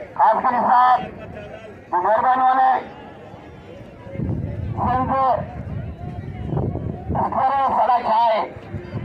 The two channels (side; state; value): both; identical; correlation 1.00